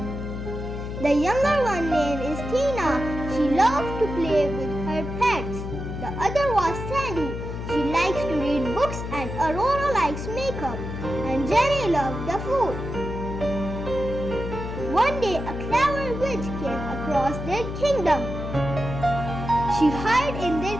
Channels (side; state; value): left; noise; hum, 6 dB below the sound